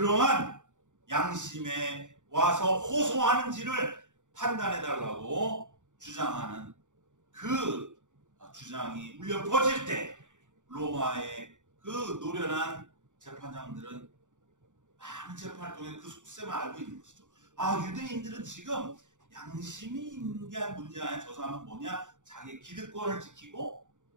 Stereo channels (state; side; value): late; left; 0.86 ms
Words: 양심에 와서 호소하는지를 판단해달라고 주장하는 그 주장이 울려 퍼질 때 로마의 그 노련한 재판장들은 많은 재판을 통해 그 속셈을 알고 있는 것이죠. 아, 유대인들은 지금 양심이 있는 게 문제가 아니라 저 사람은 뭐냐? 자기의 기득권을 지키고